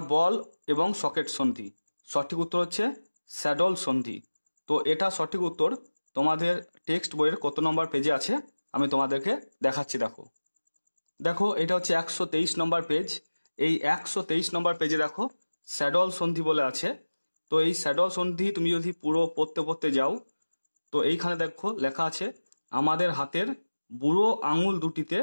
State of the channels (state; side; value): inverted; both; correlation -1.00